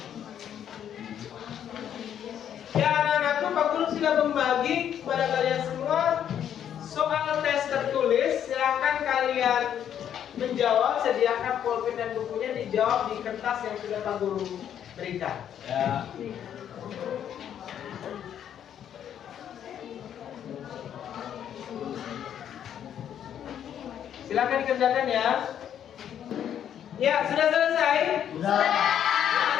Ya anak-anakku, Pak Guru sudah membagi kepada kalian semua soal tes tertulis. Silahkan kalian menjawab, sediakan pulpen dan bukunya, dijawab di kertas yang sudah Pak Guru berikan. Ya. Silahkan dikerjakan ya. Ya, sudah selesai? Sudah.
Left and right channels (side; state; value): right; quieter; 9.6 dB